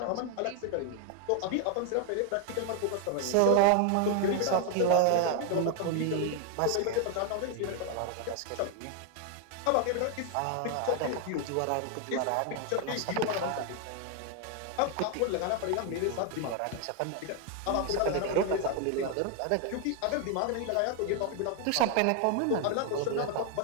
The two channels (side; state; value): both; different; correlation 0.00